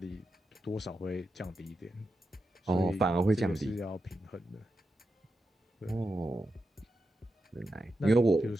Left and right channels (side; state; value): both; normal; correlation 0.88